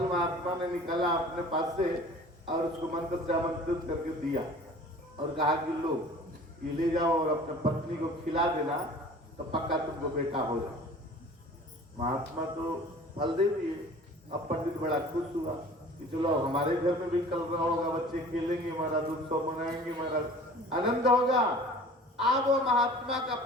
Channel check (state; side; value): normal; both; correlation 0.45